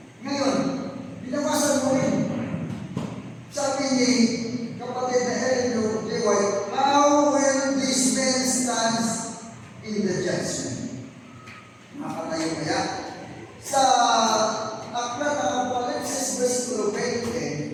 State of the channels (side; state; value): both; identical; correlation 1.00